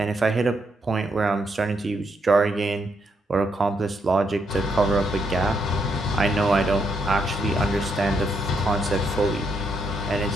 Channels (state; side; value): normal; both; correlation 0.77